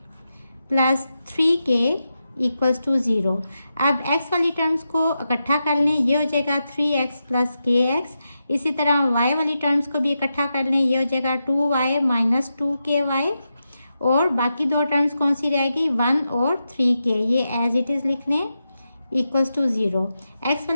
plus 3k equals to 0। अब x वाली टर्म्स को इकट्ठा कर लें, ये हो जाएगा 3x प्लस kx। इसी तरह y वाली टर्म्स को भी इकट्ठा कर लें, ये हो जाएगा 2y माइनस 2ky, और बाकी दो टर्म्स कौन सी रहेगी? 1 और 3k, ये एज इट इज़ लिख लें इक्वल्स टू 0। x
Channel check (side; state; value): both; inverted; correlation -0.88